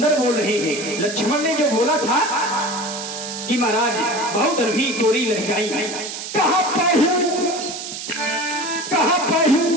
बोल रहे हैं। लक्ष्मण ने जो बोला था कि महाराज बहु धनुही तोड़ी लड़काई, कहा पहु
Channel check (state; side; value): noise; right; hiss, 8 dB below the sound